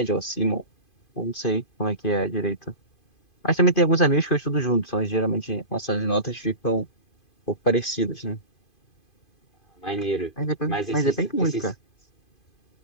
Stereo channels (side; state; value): right; late; 2.5 ms